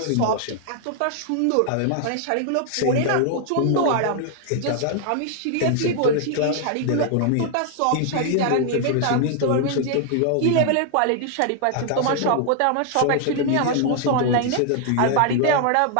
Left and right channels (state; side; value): different; both; correlation 0.00